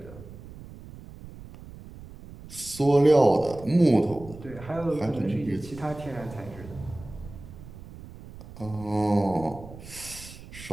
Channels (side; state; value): right; noise; rumble, 16 dB below the sound